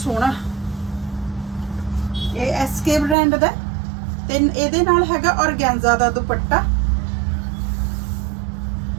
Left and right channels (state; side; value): drops out; left; at 3.2 s